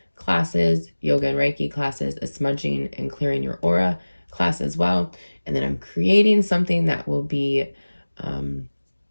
classes, yoga and Reiki classes, a smudging and clearing your aura class as well. And then I'm creating something that will be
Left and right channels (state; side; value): inverted; both; correlation -1.00